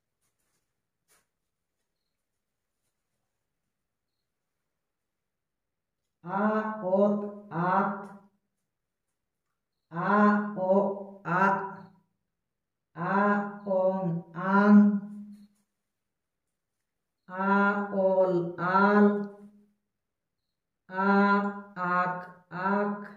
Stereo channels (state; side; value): identical; both; correlation 1.00